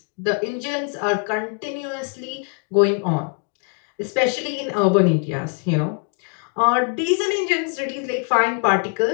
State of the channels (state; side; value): quieter; right; 38.3 dB